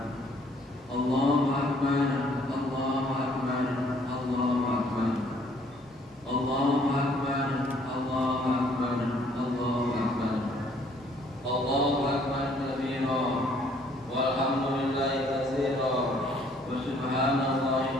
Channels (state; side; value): normal; both; correlation 0.62